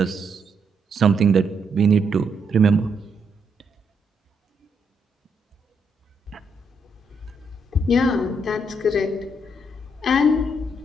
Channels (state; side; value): normal; both; correlation 0.76